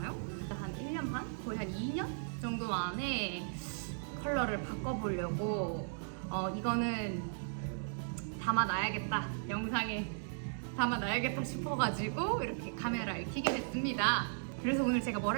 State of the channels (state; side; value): silent; left; digital silence